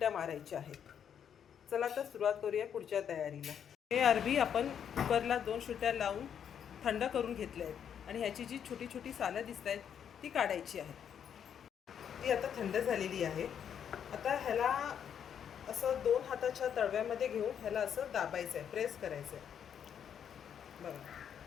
मारायच्या आहेत। चला तर सुरुवात करूया पुढच्या तयारीला। हे अरबी आपण कुकरला 2 शिट्ट्या लावून थंड करून घेतले आहेत आणि ह्याची जी छोटी छोटी सालं दिसत आहेत ती काढायची आहेत। ती आता थंड झालेली आहे। आता ह्याला असं 2 हाताच्या तळव्यामध्ये घेऊन ह्याला असं दाबायचं आहे, प्रेस करायचं आहे। बघा,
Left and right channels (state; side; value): quieter; right; 8.4 dB